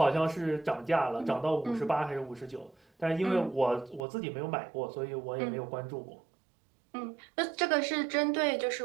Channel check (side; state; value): left; drops out; at 4.0 s